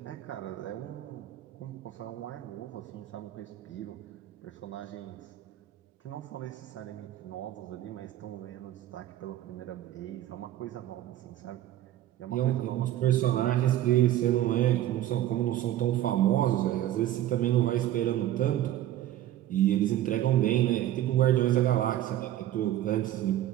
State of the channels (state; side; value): quieter; left; 13.0 dB